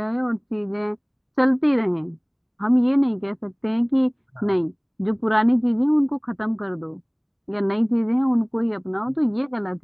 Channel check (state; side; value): identical; both; correlation 1.00